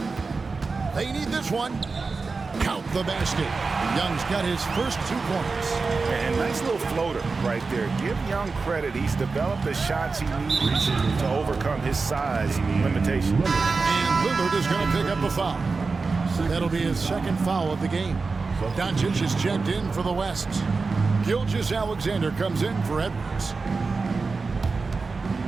They need this one. Count the basket. Young's got his first 2 points. And nice little floater right there. Give Young credit. He's developed the shots he needs to overcome his size limitation. And Lillard is going to pick up a foul. That'll be his second foul of the game. Doncic is checked in for the West. Gilgeous-Alexander comes in for Edwards.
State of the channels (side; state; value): left; quieter; 4.2 dB